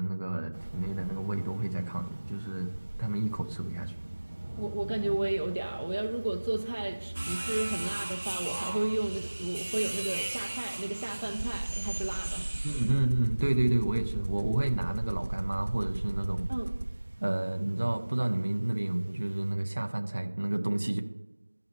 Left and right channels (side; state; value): both; inverted; correlation -1.00